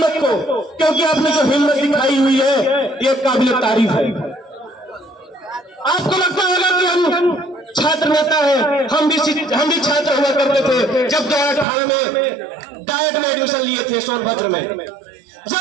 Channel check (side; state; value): left; drops out; at 11.7 s